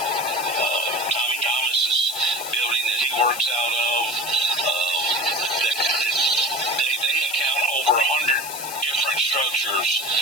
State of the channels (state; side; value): noise; left; hiss, 8 dB below the sound